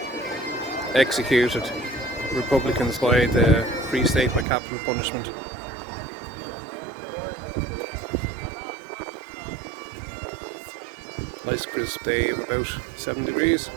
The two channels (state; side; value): drops out; left; at 4.5 s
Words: executed Republicans by the Free State by capital punishment. Nice crisp day of about 7 degrees,